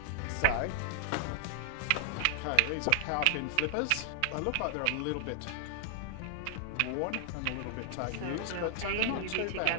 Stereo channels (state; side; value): different; both; correlation -0.01